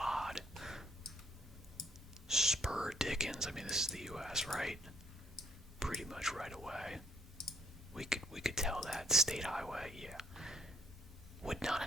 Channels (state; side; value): normal; both; correlation 0.65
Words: Spur Dickens. I mean, this is the U.S., right? Pretty much right away. We could tell that. State highway, yeah. Would not